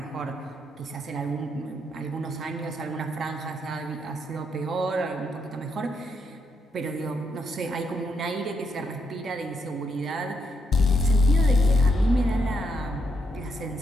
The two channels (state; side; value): normal; both; correlation 0.79